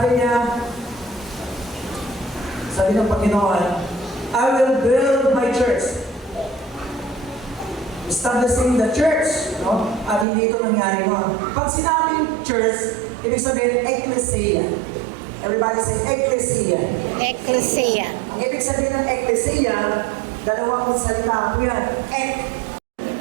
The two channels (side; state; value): left; drops out; at 10.2 s